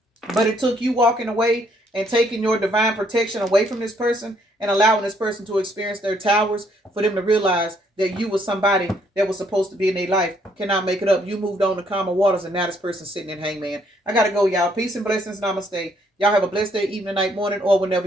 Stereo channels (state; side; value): normal; both; correlation 0.68